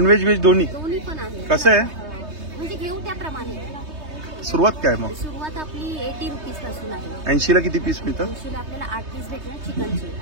व्हेज दोन्ही? दोन्ही पण आहे. कसं आहे? म्हणजे घेऊ त्याप्रमाणे. सुरुवात काय मग? सुरुवात आपली 80 रुपीज पासून आहे. 80ला किती पीस मिळतं? 80ला आपल्याला 8 पीस भेटणार चिकनचे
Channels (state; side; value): late; left; 3.2 ms